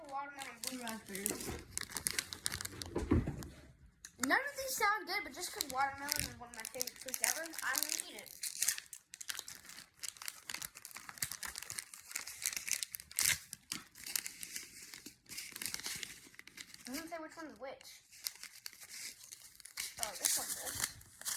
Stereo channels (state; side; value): identical; both; correlation 1.00